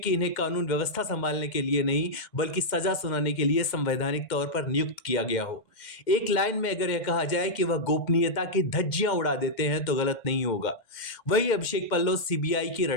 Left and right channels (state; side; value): late; right; 2.1 ms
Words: इन्हें कानून व्यवस्था संभालने के लिए नहीं बल्कि सजा सुनाने के लिए संवैधानिक तौर पर नियुक्त किया गया हो। एक लाइन में अगर यह कहा जाए कि वह गोपनीयता की धज्जियां उड़ा देते हैं तो गलत नहीं होगा। वही अभिषेक पल्लव सीबीआई की